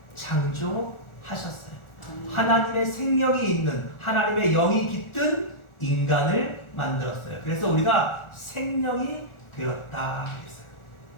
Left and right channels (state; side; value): late; right; 1.4 ms